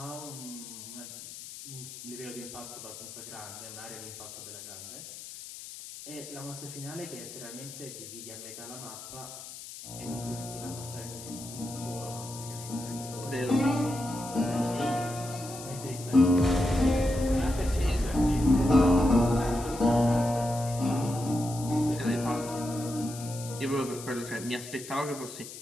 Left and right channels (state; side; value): noise; left; hiss, 12 dB below the sound